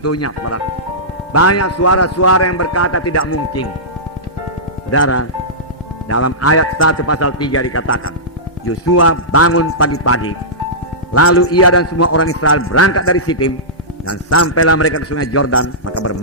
saudara. Banyak suara-suara yang berkata tidak mungkin. Saudara, dalam ayat 1 pasal 3 dikatakan, Yosua bangun pagi-pagi, lalu ia dan semua orang Israel berangkat dari Sitim, dan sampailah mereka ke sungai Yordan, maka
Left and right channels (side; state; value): both; normal; correlation -0.17